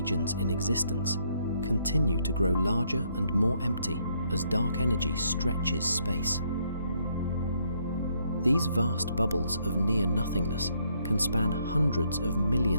in existence, continue to grow larger and more empty as dark energy stretches space. These vast bubbles of near-nothingness can span hundreds of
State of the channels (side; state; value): both; inverted; correlation -0.72